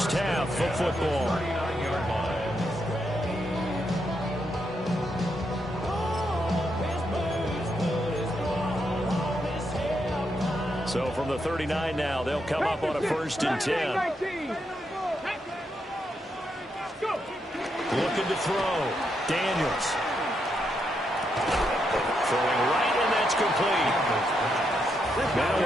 half of football. So from the 39 now, they'll come up on a 1st and 10. Looking to throw. Daniels. Throwing right, and that's complete. Now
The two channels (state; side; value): normal; both; correlation 0.81